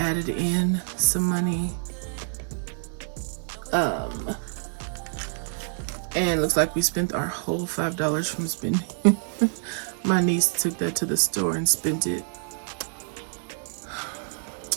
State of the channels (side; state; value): left; silent; 60 dB below the other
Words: in some money. And looks like we spent our whole $5 from spending. My niece took that to the store and spent it.